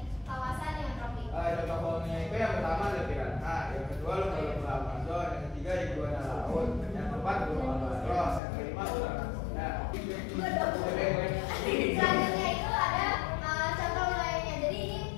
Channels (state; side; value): drops out; right; at 8.4 s